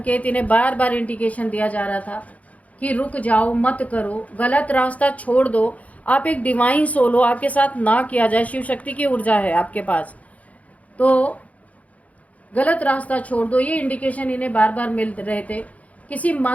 इन्हें बार बार इंडिकेशन दिया जा रहा था कि रुक जाओ, मत करो, गलत रास्ता छोड़ दो, आप एक डिवाइन सोल हो, आपके साथ ना किया जाए, शिव शक्ति की ऊर्जा है आपके पास, तो गलत रास्ता छोड़ दो, ये इंडिकेशन इन्हें बार बार मिल रहे थे। किसी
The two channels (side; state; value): right; late; 0.069 ms